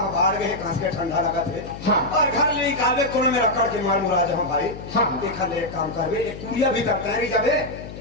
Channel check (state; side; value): noise; left; hum, 12 dB below the sound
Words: बाहर गए कांस के ठंडा लगा थे हाँ और घर ले निकाले कोने में रखड़ के मार मुरा जहाँ भाई हाँ देखा ले काम करवे एक कुड़िया भी करता है जब